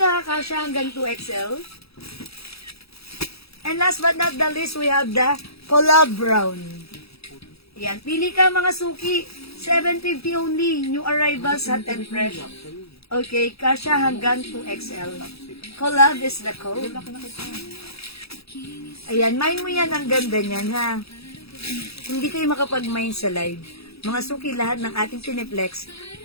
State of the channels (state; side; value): late; right; 0.77 ms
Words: ha, kasya hanggang 2XL. And last but not the least, we have the Collab Brown. Yan, pili ka mga suki. 750 only. New arrivals, hot and fresh. Okay, kasya hanggang 2XL. Collab is the code. Ayan, mine mo yan. Ang ganda niyan, ha? Hindi kayo makapag-mine sa live. Mga suki, lahat ng ating piniplex,